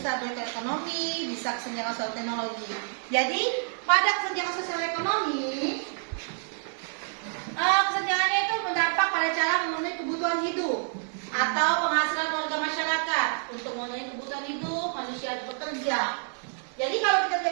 baik ekonomi, bisa kesenjangan sosial teknologi. Jadi pada kesenjangan sosial ekonomi, kesenjangannya itu berdampak pada cara memenuhi kebutuhan hidup atau penghasilan warga masyarakat. Untuk memenuhi kebutuhan hidup, manusia harus bekerja. Jadi kalau kita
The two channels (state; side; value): silent; left; 56 dB below the other